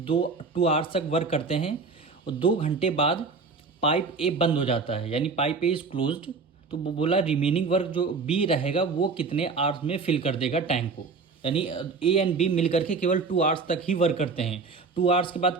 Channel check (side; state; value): left; quieter; 4.5 dB